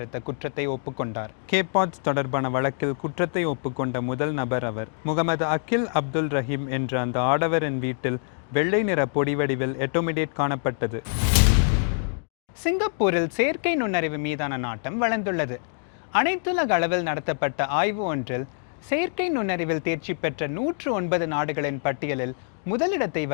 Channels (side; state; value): right; silent; digital silence